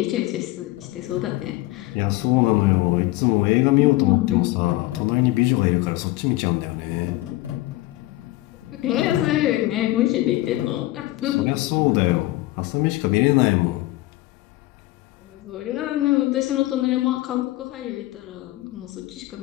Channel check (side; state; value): right; quieter; 18.1 dB